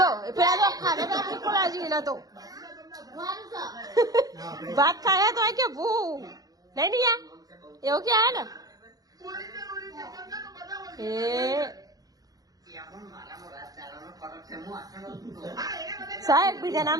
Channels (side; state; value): left; late; 0.18 ms